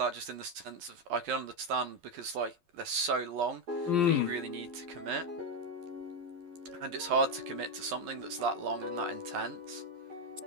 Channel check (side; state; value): left; late; 12 ms